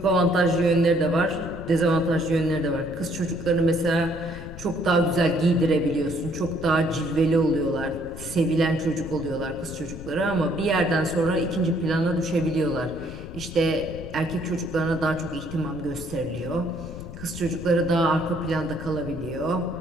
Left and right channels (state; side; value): noise; left; rumble, 12 dB below the sound